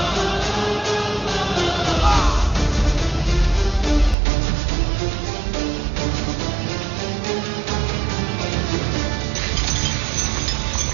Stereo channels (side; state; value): left; drops out; at 4.2 s